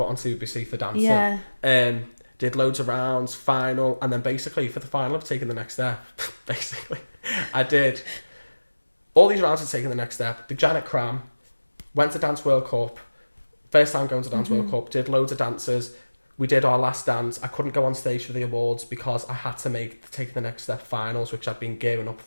on CBBC for dancing. Yeah. Did loads of rounds, final, and then basically for the final of Taking the Next Step, basically, I did all these rounds of Taking the Next Step. The Janet Cram, went to Dance World Cup, first time going to Dance World Cup, did loads of dances. We did our last dance. I couldn't go on stage for the awards because I had to make the Taking the Next Step finals, which I'd been gearing up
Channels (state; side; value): inverted; both; correlation -1.00